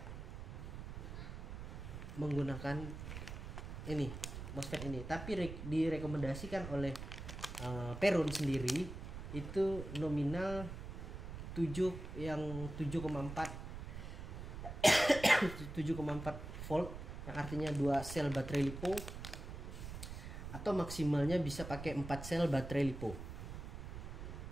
menggunakan ini MOSFET ini, tapi direkomendasikan oleh Peron sendiri itu nominal 7,4 volt, yang artinya 2 sel baterai LiPo, atau maksimalnya bisa pakai 4 sel baterai LiPo.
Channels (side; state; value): right; noise; rumble, 8 dB below the sound